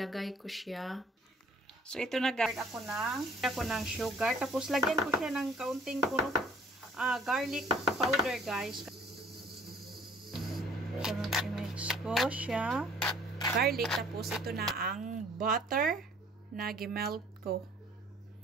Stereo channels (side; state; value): both; normal; correlation 0.55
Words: ko siya. So, ito na guys, ako ng sugar. Tapos, lagyan ko siya ng kaunting garlic powder, guys. So, i-mix ko siya. Garlic. Tapos, ito na ang butter na gimelt ko.